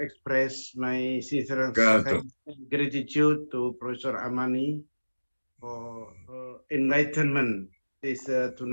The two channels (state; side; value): inverted; both; correlation -1.00